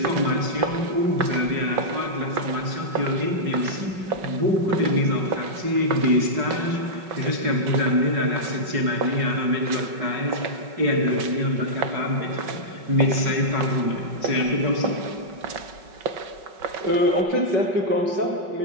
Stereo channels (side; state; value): left; late; 5.4 ms